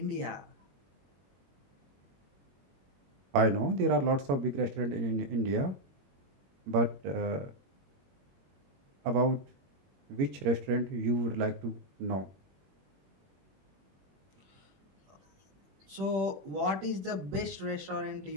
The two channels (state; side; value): late; left; 21 ms